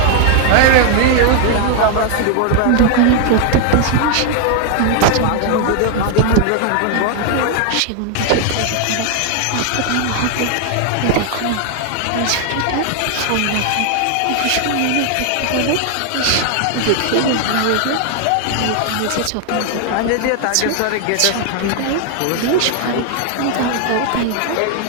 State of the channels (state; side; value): different; both; correlation 0.00